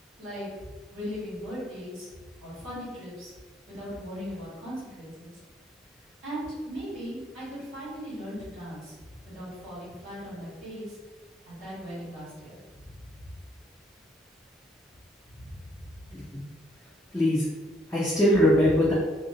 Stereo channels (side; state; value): both; normal; correlation 0.68